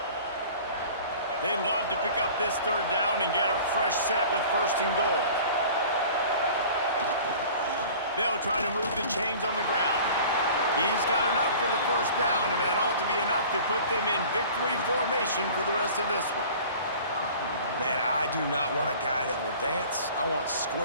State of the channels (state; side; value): inverted; both; correlation -0.44